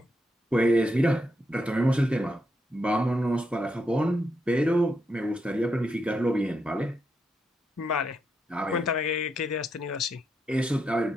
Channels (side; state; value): both; normal; correlation 0.82